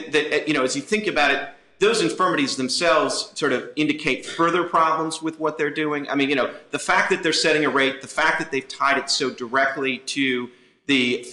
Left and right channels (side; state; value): both; identical; correlation 1.00